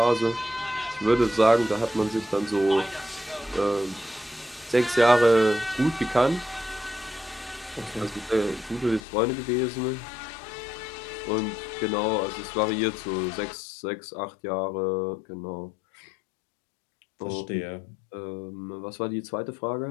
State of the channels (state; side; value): drops out; right; at 9.0 s